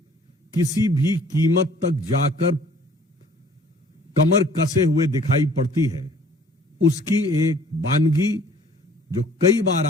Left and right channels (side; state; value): both; normal; correlation 0.54